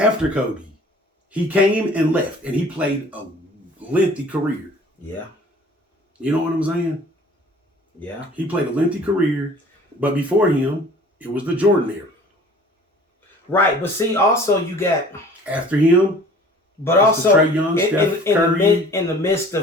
Kobe, he came and left, and he played a lengthy career. Yeah. You know what I'm saying? Yeah. He played a lengthy career, but before him, it was the Jordan era. Right, but see, also you got after him, but also Trae Young, Steph Curry. in the midst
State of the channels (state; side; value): normal; both; correlation 0.49